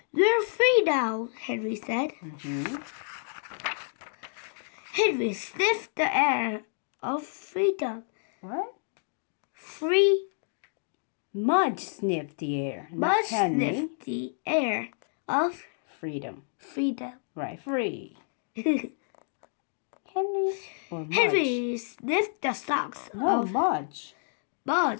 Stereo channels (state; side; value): silent; right; digital silence